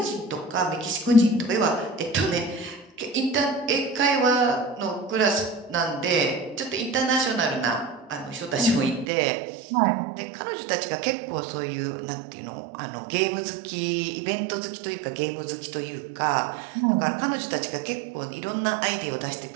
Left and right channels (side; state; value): left; drops out; at 9.1 s